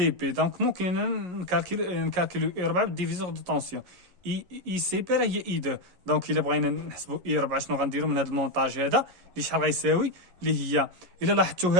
بي، دونك ممكن نكالكيلو اي 4 بالديفيزور دو طونسيون. اي سي بي راه هي اي 2، دونك الا بغينا نحسبوا اي 4 شنو غنديرو من هذا المونطاج هذا اللي شحال غيساوي، اللي هي الا لاحظتوا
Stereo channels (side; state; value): left; late; 11 ms